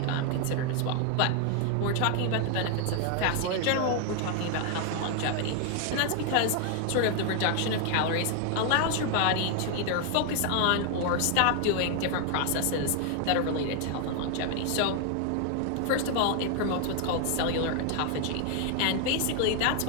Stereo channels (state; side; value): different; both; correlation 0.00